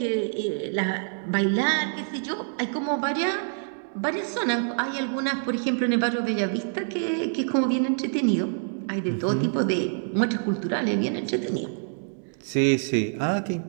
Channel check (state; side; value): silent; left; 61 dB below the other